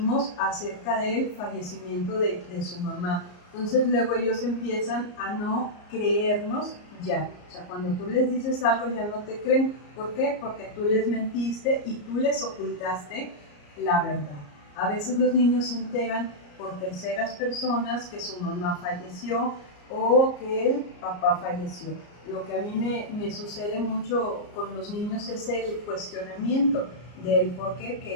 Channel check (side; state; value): right; late; 34 ms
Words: acerca del fallecimiento de su mamá. Entonces luego ellos empiezan a no creernos ya. O sea, cuando tú les dices algo ya no te creen. ¿Por qué? Porque tú les mentiste y tú les ocultaste la verdad. A veces los niños se enteran por terceras personas que su mamá falleció o que el papá falleció. Lo que a mí me sucede mucho con los niños es el cuestionamiento del por qué,